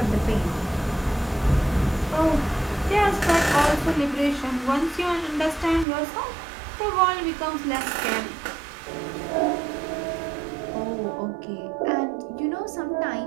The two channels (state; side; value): drops out; left; at 5.9 s